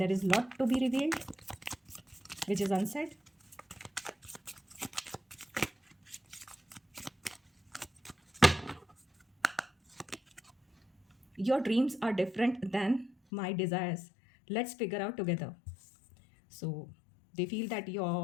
is lot to be revealed which is unsaid. Your dreams are different than my desires, let's figure out together. So they feel that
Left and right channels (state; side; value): drops out; right; at 13.2 s